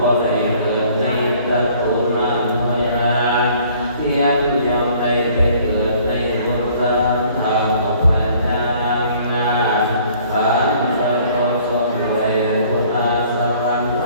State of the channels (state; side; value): inverted; both; correlation -0.57